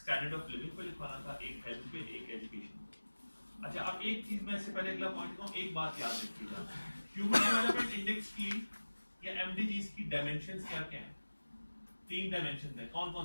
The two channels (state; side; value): inverted; both; correlation -1.00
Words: स्टैंडर्ड ऑफ लिविंग पे लिखवाना था, एक हेल्थ पे, एक एजुकेशन। अच्छा, अब एक चीज मैं इससे पहले अगला पॉइंट कहूँ, एक बात याद रखिएगा, ह्यूमन डेवलपमेंट इंडेक्स की या एमडीजीज की डायमेंशंस क्या क्या हैं? 3 डायमेंशन है, कौन